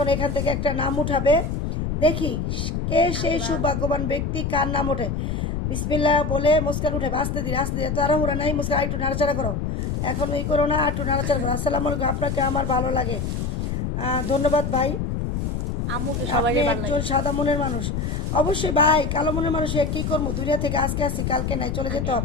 এখান থেকে একটা নাম উঠাবে, দেখি কে সেই সৌভাগ্যবান ব্যক্তি, কার নাম ওঠে। বিসমিল্লাহ বলে মুস্কান উঠে, আস্তে ধীরে আস্তে ধীরে, তাড়াহুড়া নাই। মুস্কান একটু নাড়াচাড়া করো, এখন এই করো না, একটু নাড়াচাড়া করো। আসসালামু আলাইকুম, আপনাকে আমার ভালো লাগে, ধন্যবাদ ভাই। আপনি একজন সাদা মনের মানুষ। অবশ্যই ভাই, কালো মনের মানুষ কি করবো, দুনিয়া থেকে আজকে আসি কালকে নাই, চলে যেতে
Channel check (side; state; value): left; noise; rumble, 2 dB below the sound